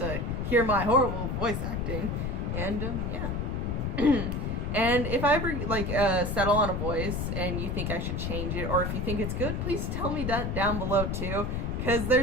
hear my horrible voice acting, and yeah. And if I ever like settle on a voice and you think I should change it, or if you think it's good, please tell me that down below too, because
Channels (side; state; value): left; noise; rumble, 1 dB below the sound